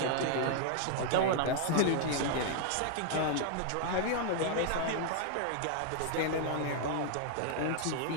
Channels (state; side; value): different; both; correlation 0.00